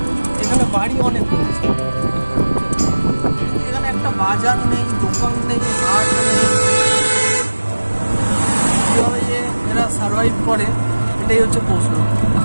এখানে বাড়ি অনেক রয়েছে, এখানে একটা বাজার নেই, দোকান নেই, হাট নেই। কিভাবে যে এরা সার্ভাইভ করে এটাই হচ্ছে প্রশ্ন।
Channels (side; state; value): both; inverted; correlation -1.00